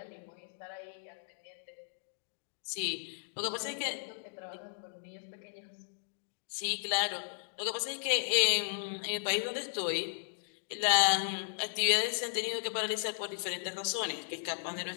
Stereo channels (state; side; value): silent; right; digital silence